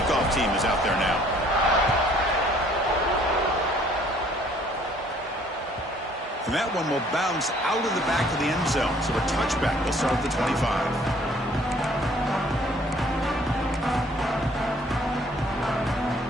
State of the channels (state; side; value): normal; both; correlation 0.59